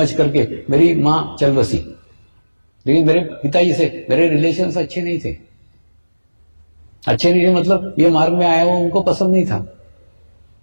करके मेरी मां चल बसी, लेकिन मेरे पिताजी से मेरे रिलेशंस अच्छे नहीं थे। अच्छे नहीं थे मतलब ये मार्ग में आया वो उनको पसंद नहीं था।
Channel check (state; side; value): inverted; both; correlation -1.00